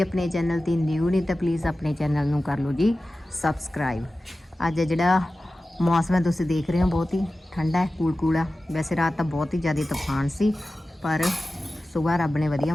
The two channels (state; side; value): normal; both; correlation 0.95